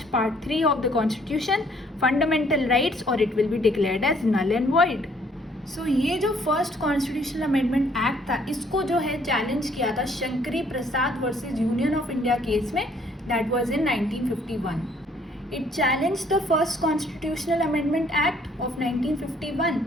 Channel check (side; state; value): both; normal; correlation 0.63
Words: part 3 of the constitution, fundamental rights, और it will be declared as null and void. So ये जो फर्स्ट कॉन्स्टिट्यूशनल अमेंडमेंट एक्ट था इसको जो है चैलेंज किया था Shankari Prasad versus Union of India case में, that was in 1951. It challenge the first constitutional amendment act of 1951